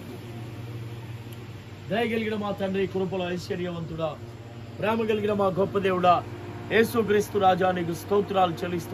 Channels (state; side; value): identical; both; correlation 1.00